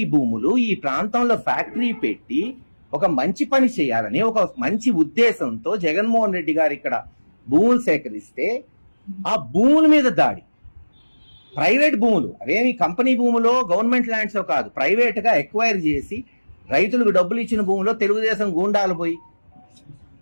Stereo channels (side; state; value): both; inverted; correlation -1.00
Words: భూములు ఈ ప్రాంతంలో ఫ్యాక్టరీ పెట్టి ఒక మంచి పని చేయాలని ఒక మంచి ఉద్దేశంతో జగన్మోహన్ రెడ్డి గారు ఇక్కడ భూములు సేకరిస్తే ఆ భూముల మీద దాడి. ప్రైవేట్ భూములు, అవేమి కంపెనీ భూములో గవర్నమెంట్ ల్యాండ్స్ కాదు, ప్రైవేట్ గా ఎక్వైర్ చేసి రైతులకు డబ్బులు ఇచ్చిన భూములో తెలుగుదేశం గూండాలు పోయి